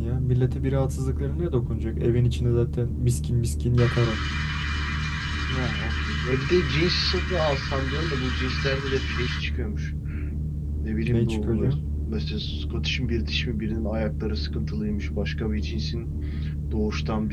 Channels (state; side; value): identical; both; correlation 1.00